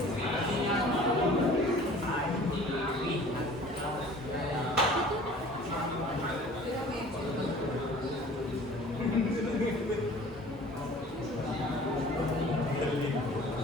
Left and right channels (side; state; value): both; normal; correlation 0.47